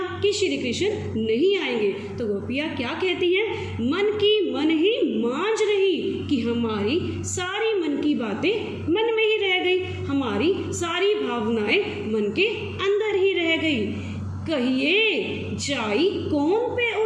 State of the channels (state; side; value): identical; both; correlation 1.00